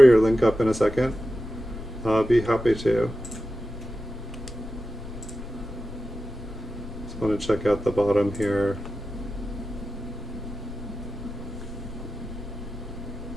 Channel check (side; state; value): both; normal; correlation 0.92